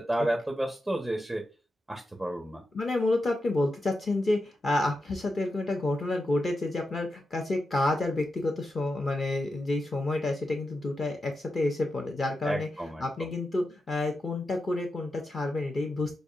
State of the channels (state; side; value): normal; both; correlation 0.89